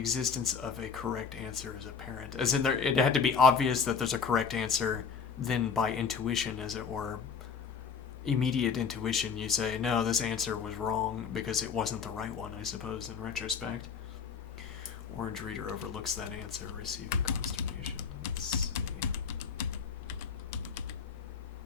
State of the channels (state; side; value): quieter; right; 6.2 dB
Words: of a correct answer is apparent. As in, it had to be obvious that there's a correct answer, then by intuition, as it were, immediate intuition, you say, no, this answer was wrong because it wasn't the right one, I suppose, in retrospect. Orange reader overlooks that answer, receiving consternation. Let's see.